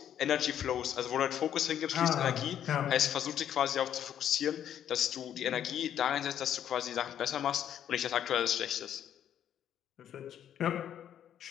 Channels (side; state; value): right; quieter; 10.0 dB